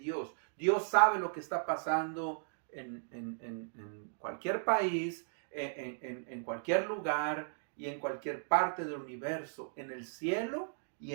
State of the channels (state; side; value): silent; left; digital silence